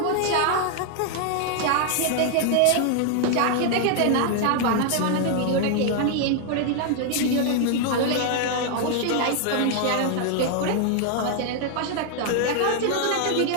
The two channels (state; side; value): different; both; correlation 0.00